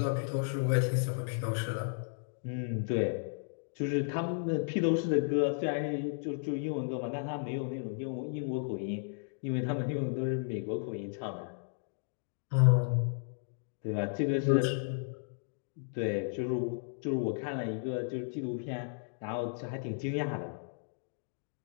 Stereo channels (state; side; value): silent; right; digital silence